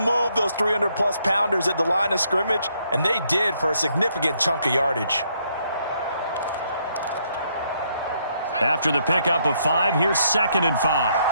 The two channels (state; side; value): inverted; both; correlation -0.73